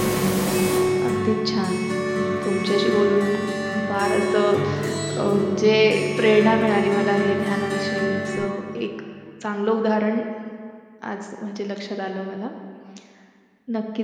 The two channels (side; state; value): both; identical; correlation 1.00